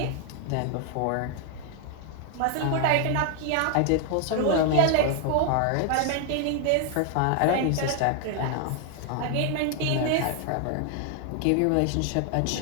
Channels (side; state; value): both; different; correlation 0.00